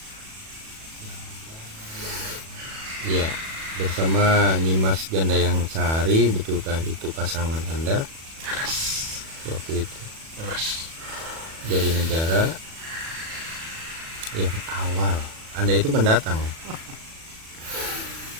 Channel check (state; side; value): late; left; 37 ms